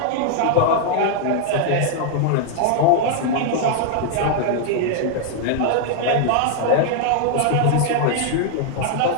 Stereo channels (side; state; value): both; different; correlation 0.00